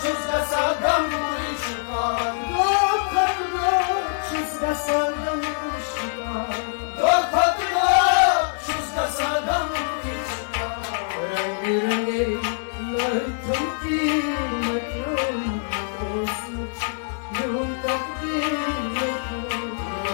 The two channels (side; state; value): right; silent; digital silence